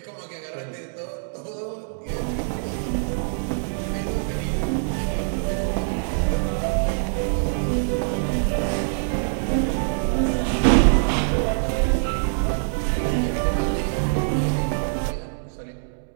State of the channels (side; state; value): left; silent; digital silence